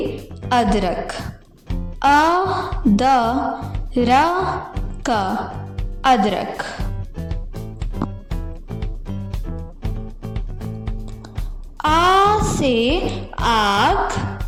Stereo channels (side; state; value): both; identical; correlation 1.00